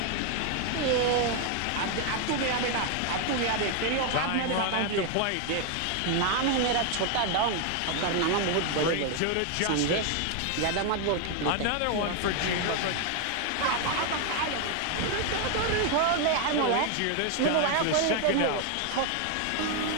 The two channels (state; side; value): different; both; correlation 0.01